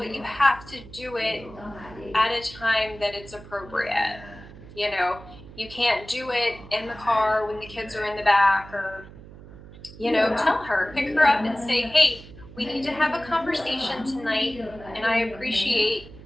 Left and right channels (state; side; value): noise; right; hum, 18 dB below the sound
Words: you have to do it at a time that it's appropriate. you know you can't do it in the car when the kids are in the back, or tell her, pick her up and say, hey, we need to have a conversation tonight, and I appreciate